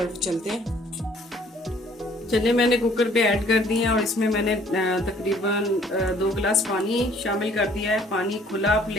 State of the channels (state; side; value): normal; both; correlation 0.58